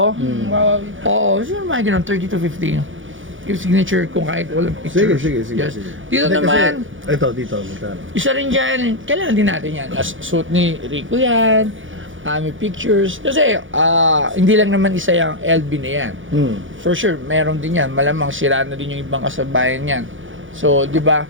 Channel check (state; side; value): late; left; 0.57 ms